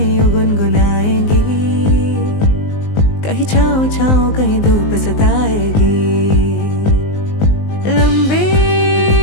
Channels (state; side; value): late; right; 19 ms